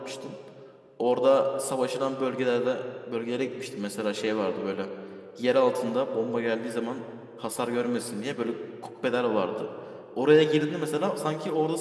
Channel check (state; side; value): identical; both; correlation 1.00